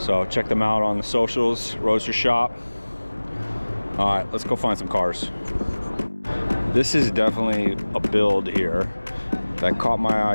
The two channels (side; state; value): both; inverted; correlation -1.00